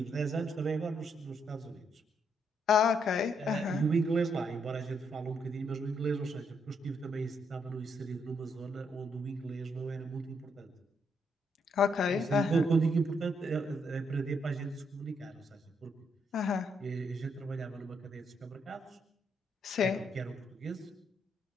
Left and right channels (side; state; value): both; normal; correlation 0.75